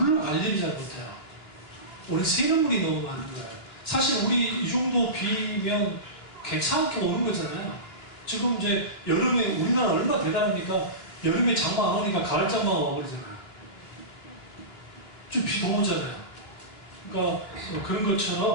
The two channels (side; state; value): right; late; 2.9 ms